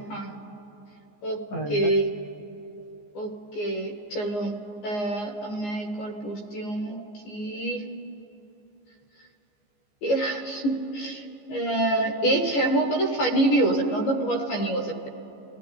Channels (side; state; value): right; late; 14 ms